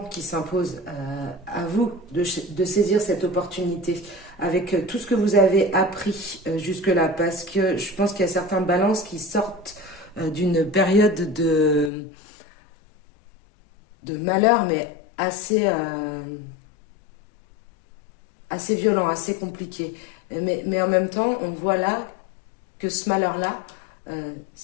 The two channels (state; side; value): drops out; right; at 11.9 s